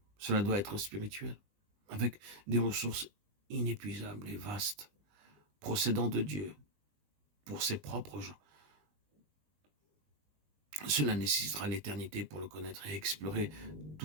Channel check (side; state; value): left; late; 20 ms